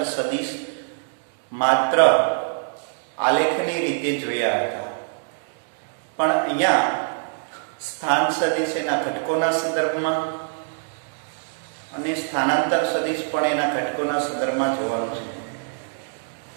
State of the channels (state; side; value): silent; left; digital silence